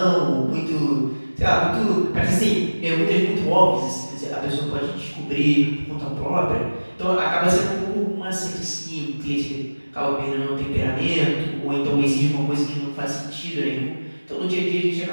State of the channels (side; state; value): both; inverted; correlation -1.00